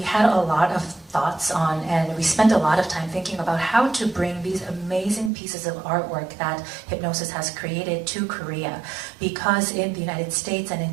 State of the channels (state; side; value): drops out; left; at 5.3 s